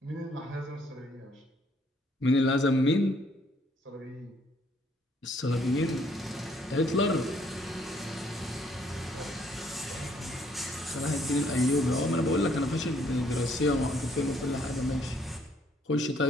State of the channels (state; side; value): normal; both; correlation 0.66